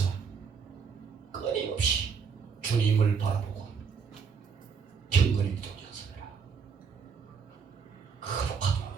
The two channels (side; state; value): left; quieter; 6.0 dB